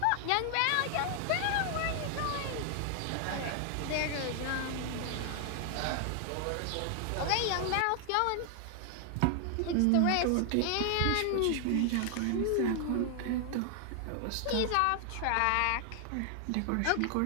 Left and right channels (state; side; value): different; both; correlation 0.00